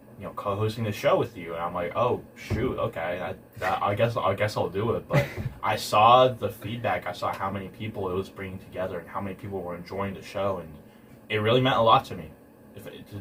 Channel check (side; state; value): both; identical; correlation 1.00